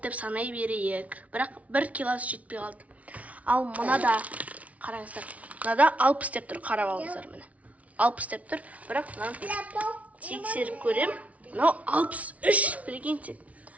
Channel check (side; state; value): left; late; 0.067 ms